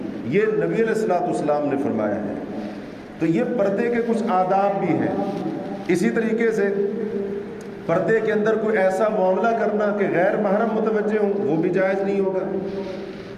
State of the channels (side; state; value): both; identical; correlation 1.00